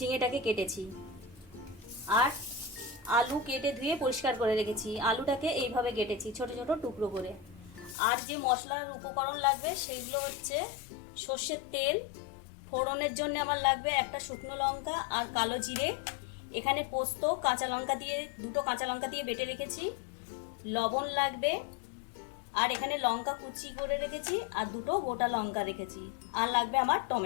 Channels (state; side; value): drops out; right; at 8.0 s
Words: কেটেছি, আর আলু কেটে ধুয়ে পরিষ্কার করে রেখেছি। আলুটাকে এইভাবে কেটেছি ছোট ছোট টুকরো করে। আর যে মশলার উপকরণ লাগবে সেইগুলো হচ্ছে সর্ষের তেল, ফোড়নের জন্য আমার লাগবে একটা শুকনো লঙ্কা আর কালো জিরে, এখানে পোস্ত কাঁচা লঙ্কা দিয়ে দুটো কাঁচা লঙ্কা দিয়ে বেটে রেখেছি, লবণ লাগবে, আর এখানে লঙ্কা কুচি করে রেখেছি আর দুটো গোটা লঙ্কা রেখেছি, আর লাগবে আমার